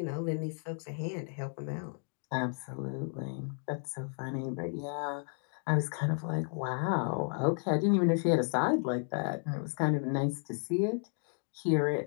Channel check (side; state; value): right; silent; 56 dB below the other